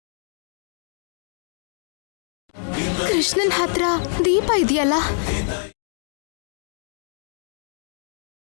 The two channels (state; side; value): silent; right; digital silence